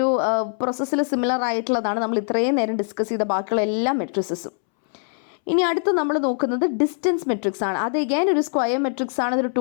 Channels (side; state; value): right; silent; 63 dB below the other